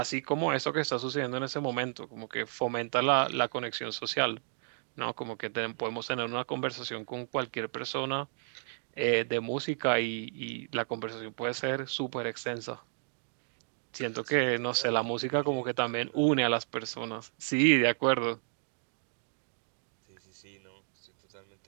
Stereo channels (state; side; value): silent; left; digital silence